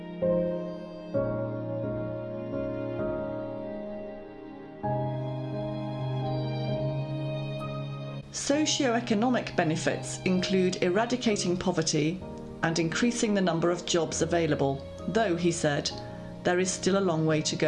Socio-economic benefits include eradicating poverty and increasing the number of jobs available, though, he said, there is still a long way to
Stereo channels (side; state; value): both; identical; correlation 1.00